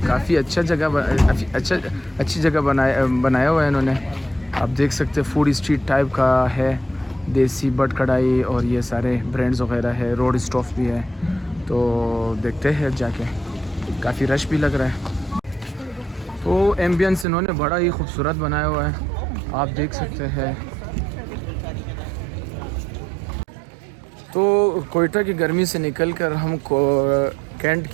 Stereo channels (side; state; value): left; drops out; at 17.2 s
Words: काफ़ी अच्छा जगह अच्छी जगह बनाया हुआ है इन्होंने। आप देख सकते हैं फूड स्ट्रीट टाइप का है, देसी बट कढ़ाई और ये सारे ब्रांड्स वगैरह है, रोड स्टॉफ भी है। तो देखते हैं जाके, काफ़ी रश भी लग रहा है। तो एम्बियंस इन्होंने बड़ा ही खूबसूरत बनाया हुआ है, आप देख सकते हैं। तो कोयटा की गर्मी से निकलकर हम कैंट